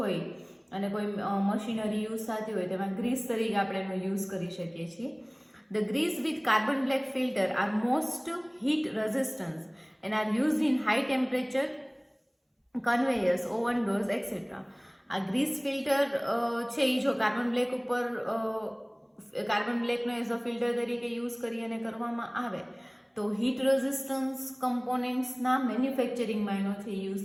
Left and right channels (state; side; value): identical; both; correlation 1.00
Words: અને કોઈ મશીનરી યુઝ થતી હોય તેમાં ગ્રીસ તરીકે આપણે એનો યુઝ કરી શકીએ છીએ. The grease with carbon black filter are most heat resistant and are used in high temperature conveyors, oven doors et cetera. આ ગ્રીસ ફિલ્ટર છે એ જો કાર્બન બ્લેક ઉપર કાર્બન બ્લેકનો એઝ અ ફિલ્ટર તરીકે યુઝ કરી અને કરવામાં આવે તો હીટ રેઝિસ્ટન્સ કમ્પોનેન્ટ્સના મેન્યુફેક્ચરિંગમાં એનો છે યુઝ